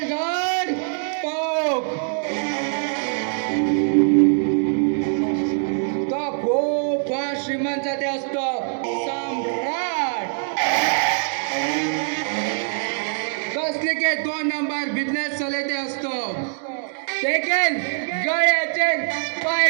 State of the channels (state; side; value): silent; left; digital silence